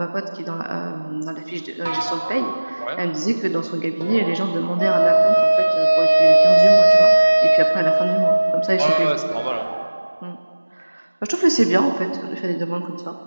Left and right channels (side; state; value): both; inverted; correlation -1.00